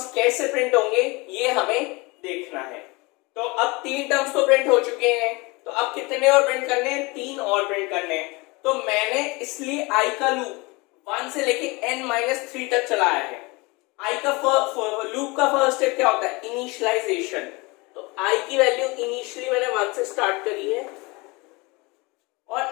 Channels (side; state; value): right; quieter; 25.5 dB